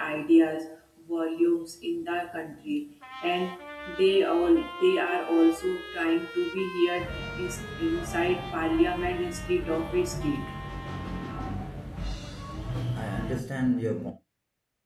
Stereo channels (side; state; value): both; identical; correlation 1.00